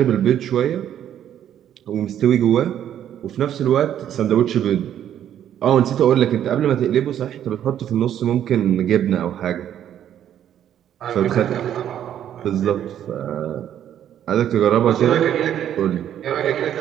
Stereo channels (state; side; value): quieter; left; 10.4 dB